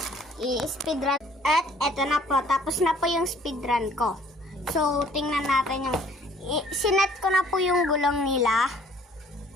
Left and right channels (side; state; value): both; normal; correlation 0.58